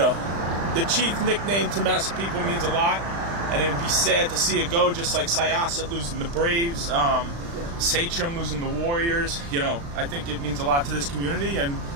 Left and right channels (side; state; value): left; late; 35 ms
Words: the chief nickname to Massapequa means a lot, and it would be sad to see it go, just like Syosset losing the Braves, Sachem losing the Warriors. You know, I think it means a lot to this community, and